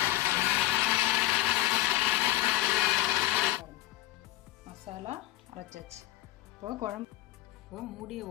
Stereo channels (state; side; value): quieter; right; 16.8 dB